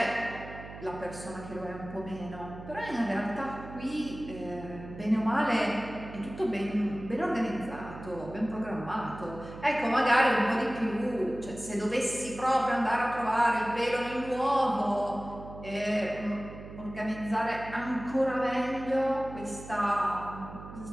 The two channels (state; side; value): noise; right; hum, 13 dB below the sound